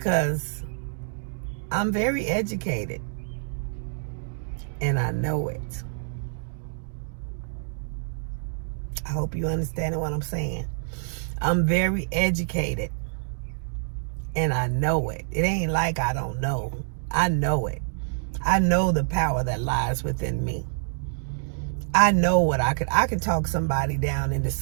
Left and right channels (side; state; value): left; silent; digital silence